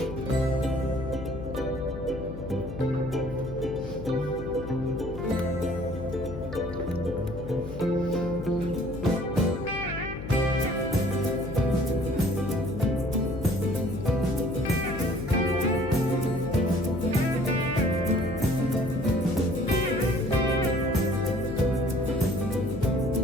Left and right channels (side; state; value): left; noise; hum, 9 dB below the sound